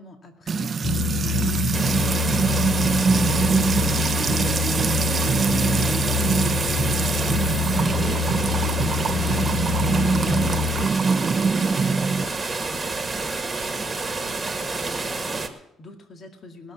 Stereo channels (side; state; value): both; normal; correlation 0.72